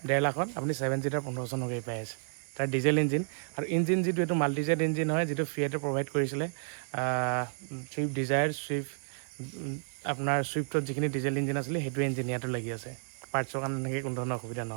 1.5 লাখত আপুনি 7 সিটাৰ 15 চনৰ গাড়ী পাই আছে তাৰ ডিজেল ইঞ্জিন আৰু ইঞ্জিন যিটো এইটো মাল্টিজেট ইঞ্জিন হয় যিটো ফিয়েটে প্ৰভাইড কৰিছিলে চুইফ্ট ডিজায়াৰ আপোনাৰ চুইফ্টত যিখিনি ডিজেল ইঞ্জিন আছিলে সেইটো ইঞ্জিন ইয়াতো লাগি আছে পাৰ্টছৰ কাৰণে এনেকৈ কোনো ধৰণৰ অসুবিধা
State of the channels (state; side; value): silent; left; digital silence